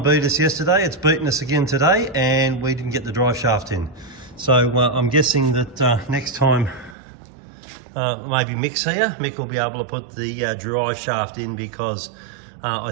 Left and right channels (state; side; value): drops out; left; at 7.0 s